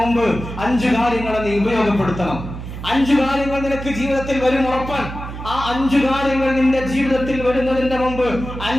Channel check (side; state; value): right; noise; hum, 9 dB below the sound